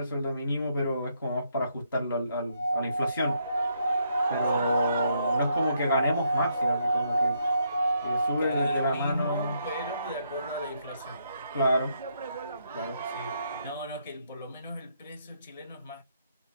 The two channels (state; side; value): inverted; both; correlation -0.75